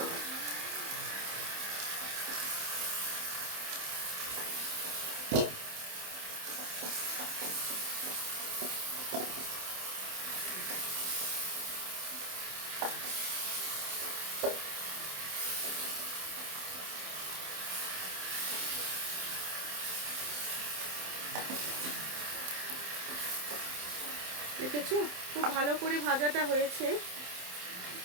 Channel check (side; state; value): left; late; 27 ms